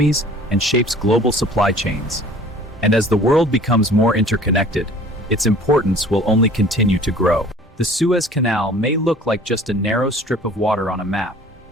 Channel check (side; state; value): both; normal; correlation 0.49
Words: and shapes global supply chains. And as the world becomes more interconnected, its importance will only continue to grow. The Suez Canal may look like just a narrow strip of water on a map,